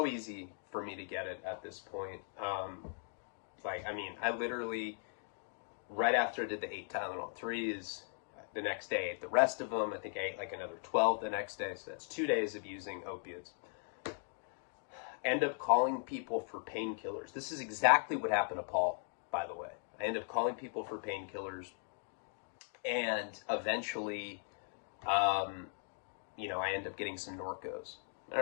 easy for me to get it at this point. I literally, right after I did the 8 Tylenol 3s, the next day I ate the rest of them. I think I ate like another 12 the next day. So that's 2 days of using opiates. End up calling people for painkillers. This is exactly what happened to Paul, by the way. I end up calling people for painkillers, and eventually, I end up getting some Norcos. All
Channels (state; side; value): silent; right; 52 dB below the other